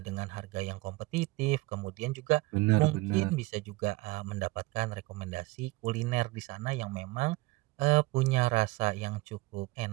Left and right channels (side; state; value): left; quieter; 21.7 dB